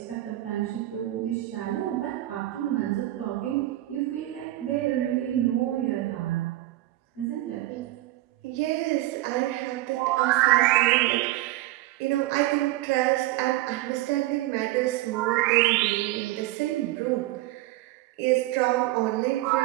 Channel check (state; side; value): quieter; left; 16.6 dB